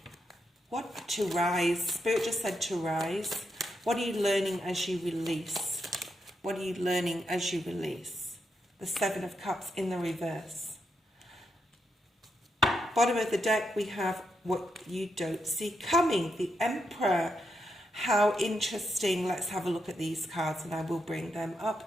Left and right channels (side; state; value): both; normal; correlation 0.83